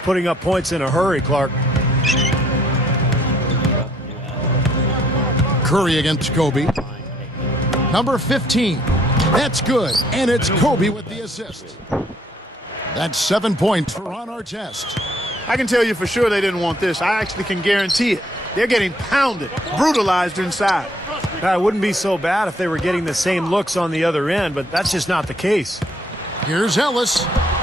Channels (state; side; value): normal; both; correlation 0.65